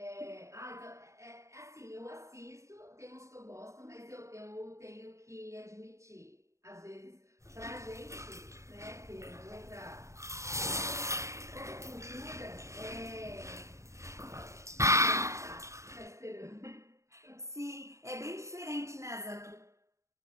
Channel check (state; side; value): late; left; 0.14 ms